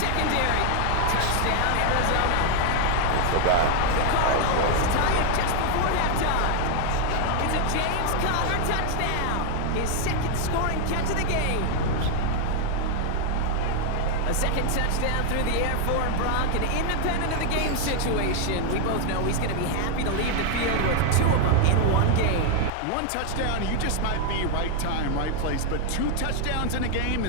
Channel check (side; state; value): both; different; correlation 0.00